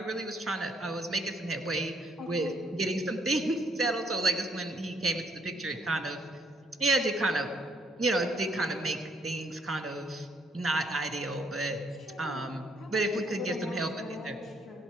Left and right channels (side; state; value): both; normal; correlation 0.69